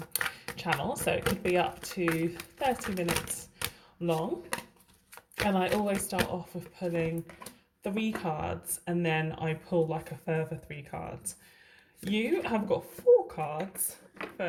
channel. So, it could be up to 30 minutes long, and I always start off with pulling 3 cards and then I pull like a further 3 cards. You have got 4 cards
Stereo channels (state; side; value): identical; both; correlation 1.00